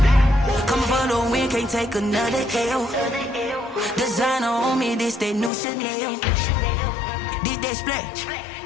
Coming for the win, can't take another L. Designer on me, this that new Chanel. Did that splash,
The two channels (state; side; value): drops out; right; at 5.5 s